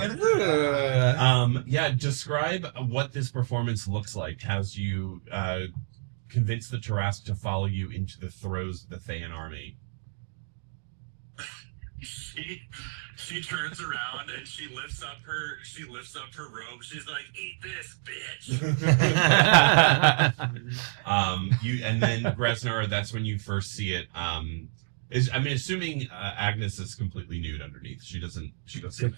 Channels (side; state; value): left; silent; digital silence